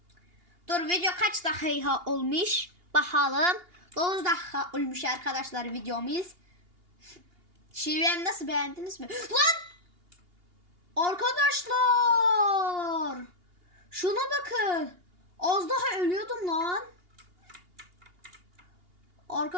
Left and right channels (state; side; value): late; left; 2.8 ms